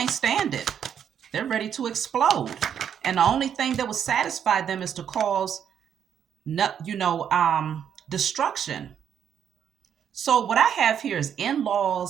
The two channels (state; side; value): quieter; left; 8.6 dB